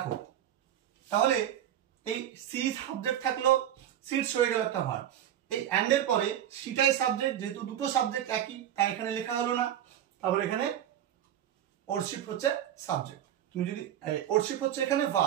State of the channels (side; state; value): left; quieter; 10.9 dB